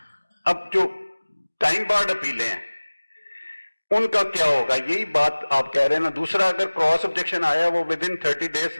اب جو ٹائم بارڈ اپیلیں ہیں ان کا کیا ہوگا, یہی بات آپ کہہ رہے ہیں نا. دوسرا اگر کراس آبجیکشن آیا وہ ود ان 30 days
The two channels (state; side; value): inverted; both; correlation -1.00